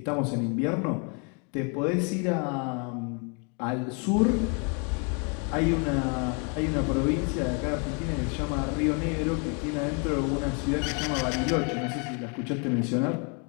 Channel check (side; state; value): right; quieter; 36.8 dB